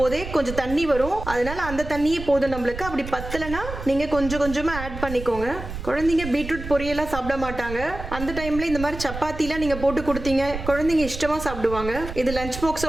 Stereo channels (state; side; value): noise; right; rumble, 9 dB below the sound